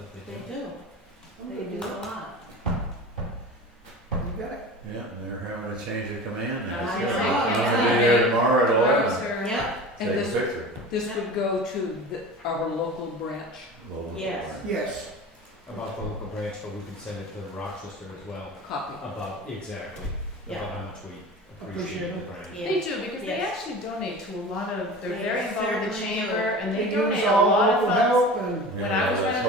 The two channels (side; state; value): both; normal; correlation 0.34